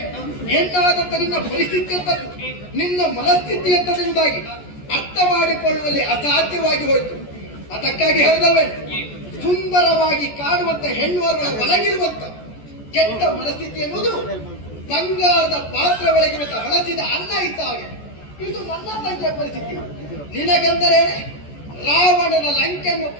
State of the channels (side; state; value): right; late; 14 ms